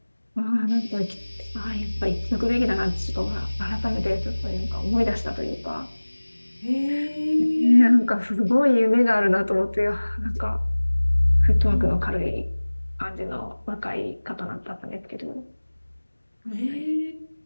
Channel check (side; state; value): both; inverted; correlation -1.00